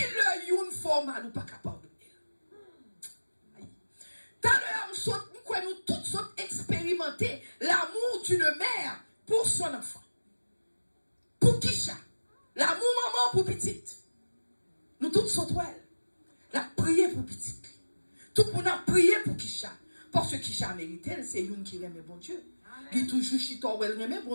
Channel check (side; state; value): both; inverted; correlation -1.00